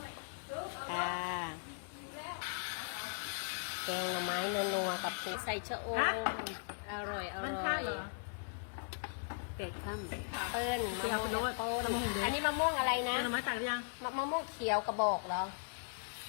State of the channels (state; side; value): silent; right; digital silence